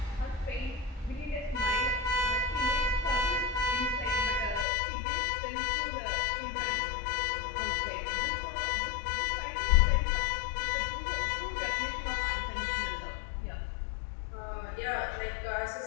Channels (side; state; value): right; drops out; at 4.7 s